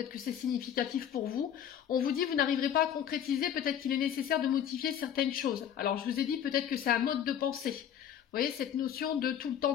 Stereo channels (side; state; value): right; quieter; 9.5 dB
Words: que c'est significatif pour vous. On vous dit vous n'arriverez pas à concrétiser, peut-être qu'il est nécessaire de modifier certaines choses. Alors je vous ai dit peut-être que c'est un mode de pensée. Vous voyez, cette notion de tout le temps